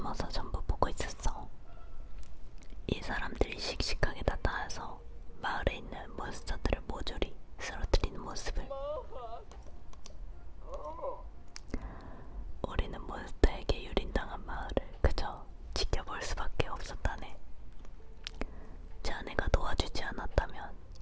전부 보고 있었어. 이 사람들이 씩씩하게 나타나서 마을에 있는 몬스터들을 모조리 쓰러뜨리는 모습을. 우리는 몬스터에게 유린당한 마을을 그저 지켜볼 수밖에 없었다네. 자네가 도와주지 않았다면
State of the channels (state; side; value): identical; both; correlation 1.00